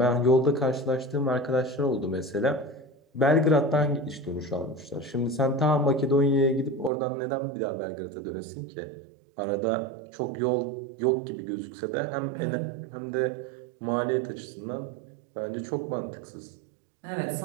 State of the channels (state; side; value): drops out; left; at 6.9 s